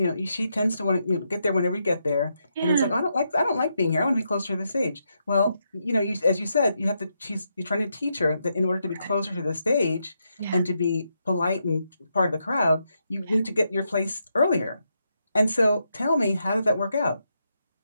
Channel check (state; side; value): inverted; both; correlation -0.81